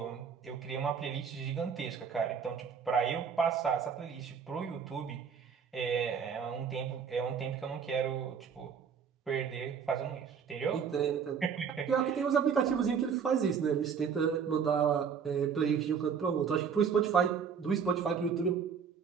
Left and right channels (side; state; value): left; quieter; 6.7 dB